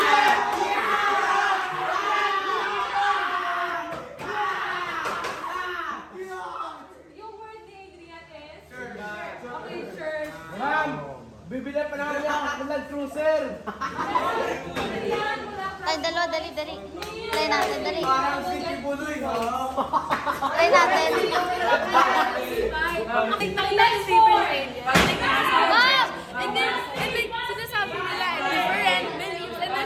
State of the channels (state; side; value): identical; both; correlation 1.00